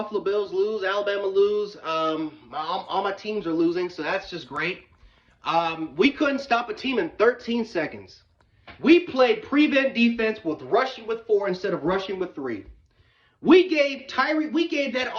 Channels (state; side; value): identical; both; correlation 1.00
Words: Bills lose, Alabama lose. All my teams are losing, so that's just great. We couldn't stop a team in 13 seconds. We played prevent defense with rushing with 4 instead of rushing with 3. We gave that